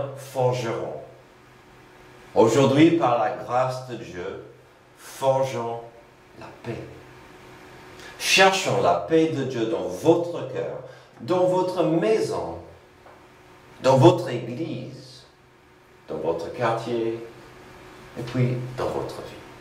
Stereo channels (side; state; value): both; identical; correlation 1.00